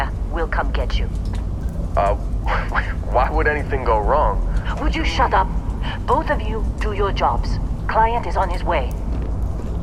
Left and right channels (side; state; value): both; identical; correlation 1.00